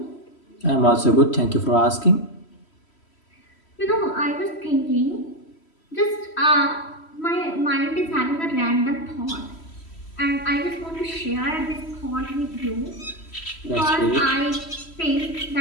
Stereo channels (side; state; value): right; late; 3.1 ms